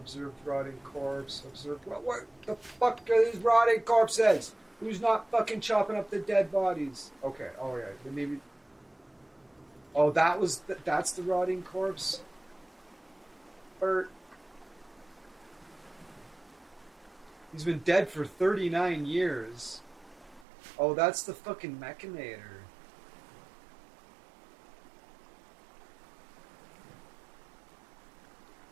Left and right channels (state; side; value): drops out; left; at 20.5 s